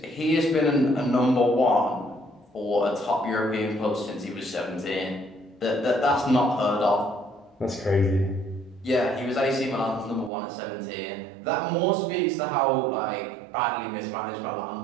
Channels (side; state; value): left; drops out; at 10.3 s